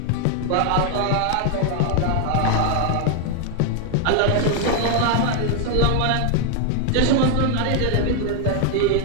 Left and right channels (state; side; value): different; both; correlation 0.00